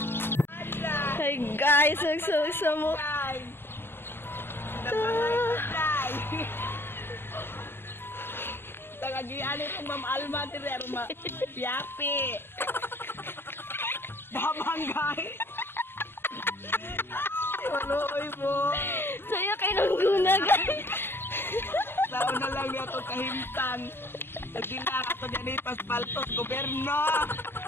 guys, nagsama Tagagian ito Ma'am Alma dire ma yapi. Babanggay. Waloy mo. saya kay nangguna guys. Tao na lang yato kahimtang. Nagdila ato dyan paspaltos gobyerno.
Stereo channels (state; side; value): late; right; 0.11 ms